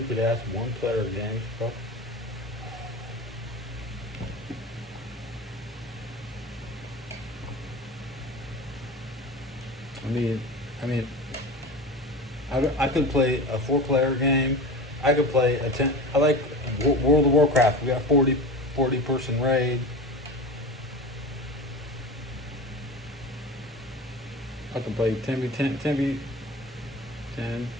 one-player games, bro. I could play a 4-player game. I could play a 10. I like World of Warcraft. We got 40 person raid. I can play 10v10, 10v10.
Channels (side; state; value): both; normal; correlation 0.30